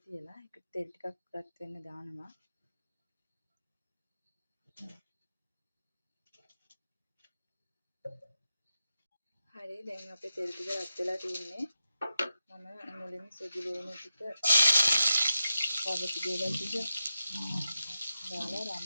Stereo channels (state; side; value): inverted; both; correlation -0.89